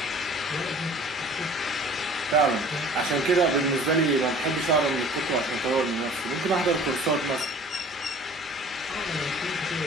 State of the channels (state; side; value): normal; both; correlation 0.47